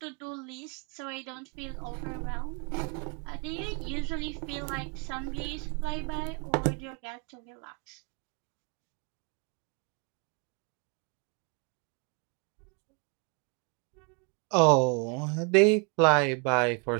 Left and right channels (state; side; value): quieter; left; 33.9 dB